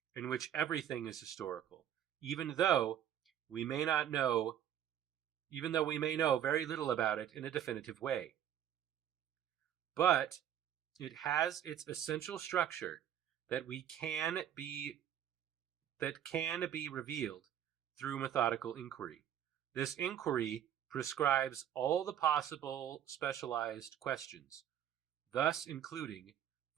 in which everything is historical, even though we may know very little about it in a definitive way. But it has its essential structure that can be revealed through methodical inquiry. This inquiry prescribes all the possible specialized questions, thus including,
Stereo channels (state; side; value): quieter; left; 10.2 dB